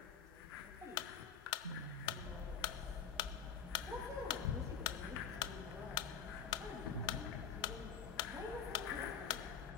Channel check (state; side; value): quieter; right; 7.3 dB